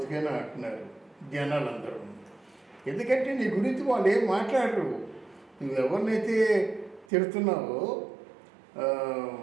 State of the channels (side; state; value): left; drops out; at 7.1 s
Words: అంటున్నారు జనాలందరూ. ఎందుకంటే నీ గురించి వాళ్ళు ఏం మాట్లాడరు. నువ్వు ఎవరినైతే తిడుతున్నావో